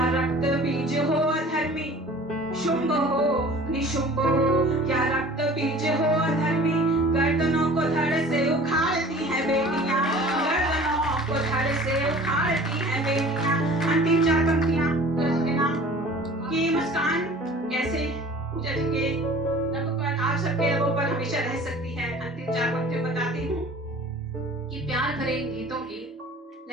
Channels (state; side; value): normal; both; correlation 0.45